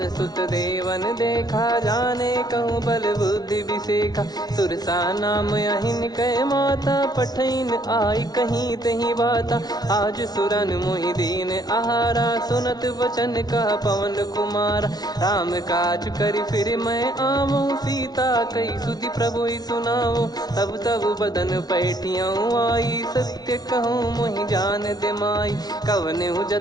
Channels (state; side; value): late; right; 0.19 ms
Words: सुत देवन देखा, जाने कहूँ बल बुद्धि विसेखा, सुरसा नाम अहिन कै माता, पठैन आई कहीं तहीं बाता। आज सुरन मोहि दीन आहारा, सुनत वचन कह पवन कुमारा, राम काज करि फिर मैं आवूँ, सीता कई सुधि प्रभु ही सुनाओ। तब तब बदन पैठियाँ आई, सत्य कहूँ मोहि जान दे माई, कवने